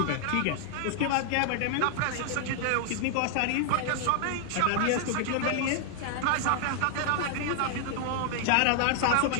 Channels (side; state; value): both; different; correlation 0.00